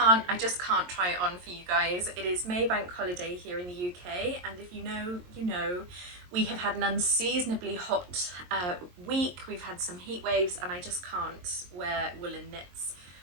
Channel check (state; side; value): late; left; 22 ms